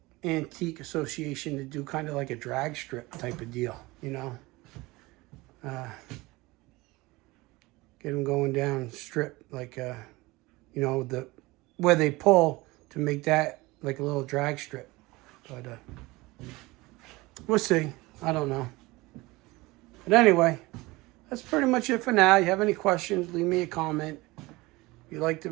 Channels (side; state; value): left; quieter; 21.5 dB